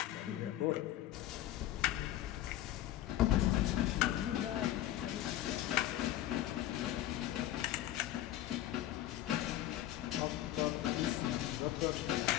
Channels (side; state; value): right; quieter; 13.4 dB